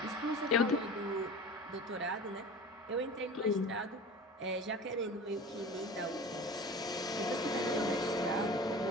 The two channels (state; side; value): normal; both; correlation 0.37